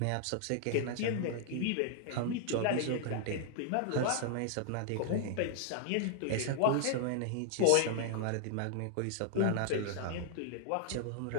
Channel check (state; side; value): different; both; correlation -0.01